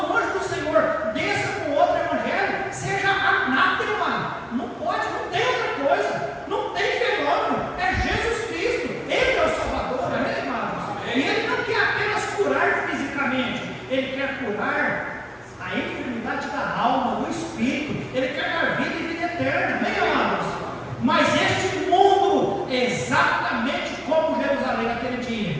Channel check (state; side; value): identical; both; correlation 1.00